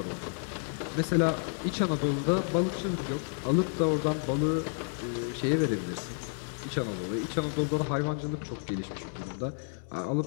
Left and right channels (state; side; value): silent; right; 57 dB below the other